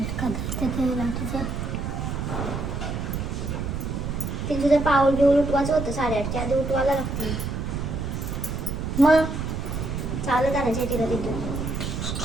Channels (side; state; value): right; noise; rumble, 3 dB below the sound